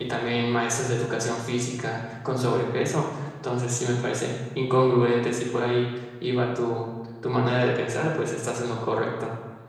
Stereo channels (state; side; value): identical; both; correlation 1.00